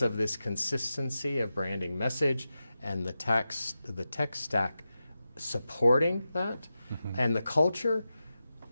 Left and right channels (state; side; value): inverted; both; correlation -0.92